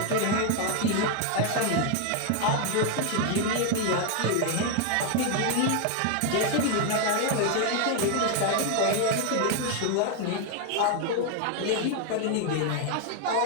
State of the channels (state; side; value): different; both; correlation 0.01